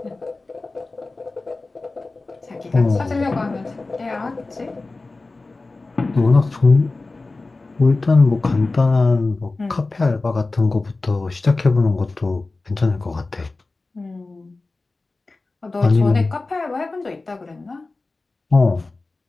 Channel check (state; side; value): quieter; right; 3.4 dB